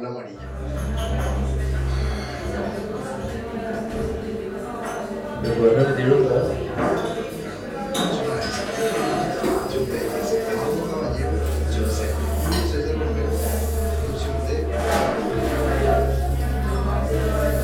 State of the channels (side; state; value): both; identical; correlation 1.00